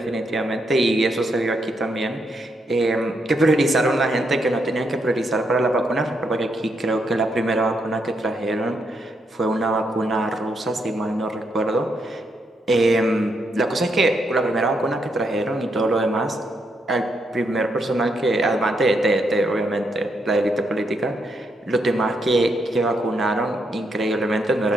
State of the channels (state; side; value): normal; both; correlation 0.79